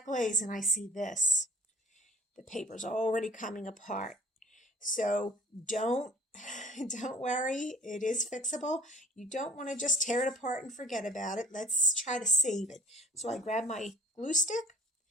glaze and I see this. The paper's already coming apart. So don't worry, it is fixable. You don't want to just tear it apart and forget about it. Let's try to save it. So I grab my glue stick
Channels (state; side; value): normal; both; correlation 0.50